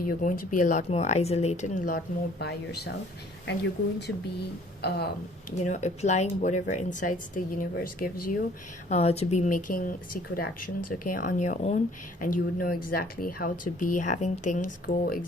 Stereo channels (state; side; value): normal; both; correlation 0.56